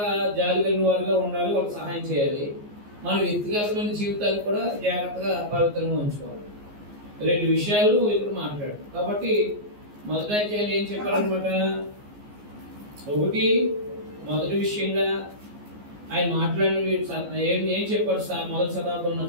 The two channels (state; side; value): late; left; 14 ms